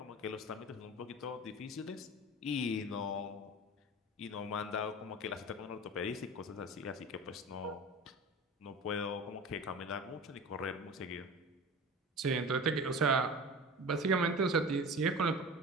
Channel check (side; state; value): both; normal; correlation 0.34